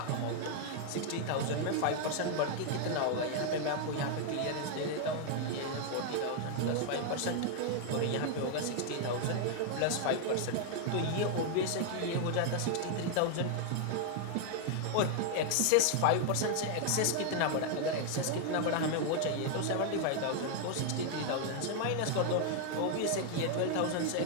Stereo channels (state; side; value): different; both; correlation 0.00